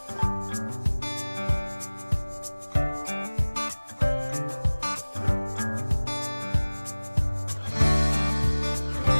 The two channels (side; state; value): both; inverted; correlation -1.00